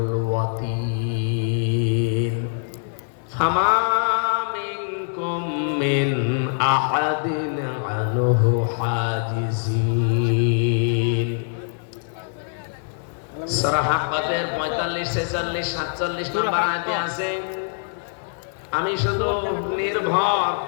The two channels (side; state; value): right; silent; digital silence